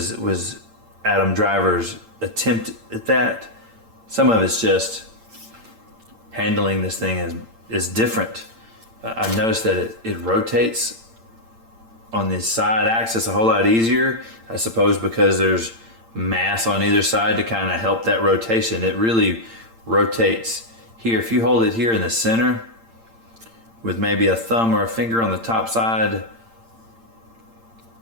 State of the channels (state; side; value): late; left; 8.8 ms